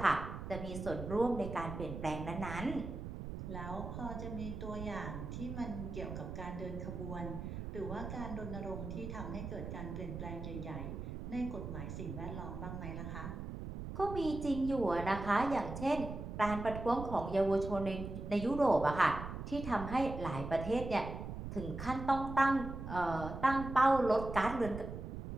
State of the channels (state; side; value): noise; right; rumble, 7 dB below the sound